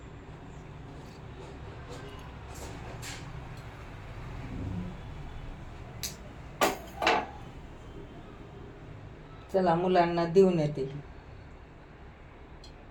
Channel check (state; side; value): identical; both; correlation 1.00